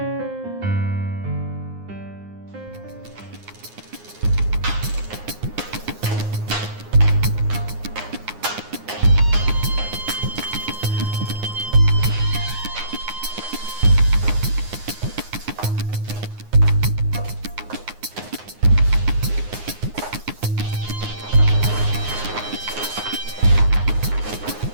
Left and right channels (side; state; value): left; late; 9.6 ms